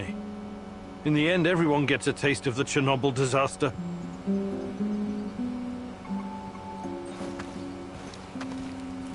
In the end, everyone gets a taste of the Chernobyl disaster.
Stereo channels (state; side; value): identical; both; correlation 1.00